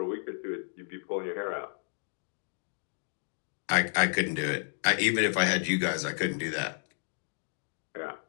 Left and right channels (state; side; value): silent; right; digital silence